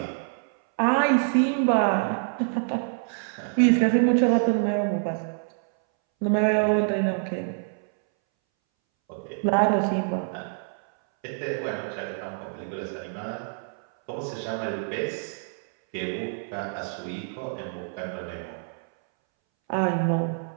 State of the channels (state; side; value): silent; left; 61 dB below the other